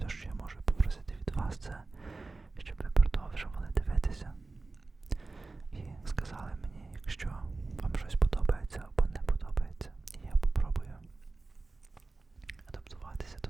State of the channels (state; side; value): quieter; left; 3.6 dB